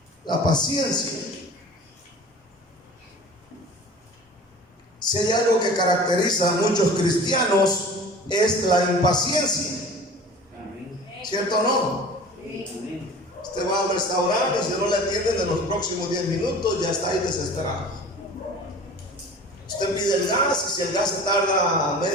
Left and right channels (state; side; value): normal; both; correlation 0.41